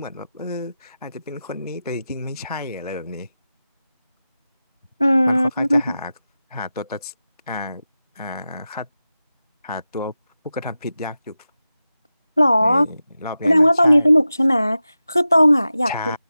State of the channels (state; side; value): inverted; both; correlation -0.93